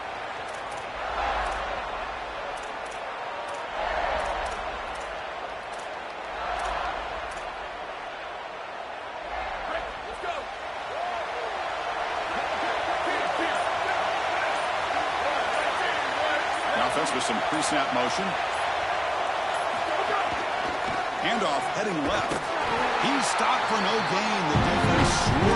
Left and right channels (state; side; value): identical; both; correlation 1.00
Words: Offense with some pre-snap motion. Handoff heading left. He's stopped for no gain. The defense